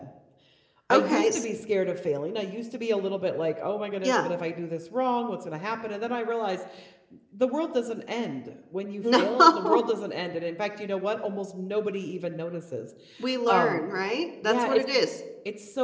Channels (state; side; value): identical; both; correlation 1.00